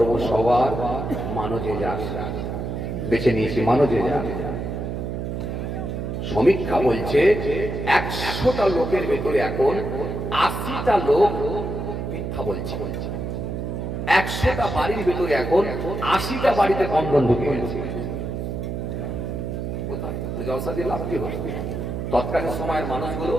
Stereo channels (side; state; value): right; noise; hum, 4 dB below the sound